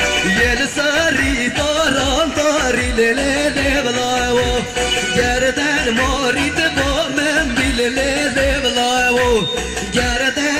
يلساري طاري ليل ضلاو جردن موري تبو من بالليل ضلاو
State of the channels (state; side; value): identical; both; correlation 1.00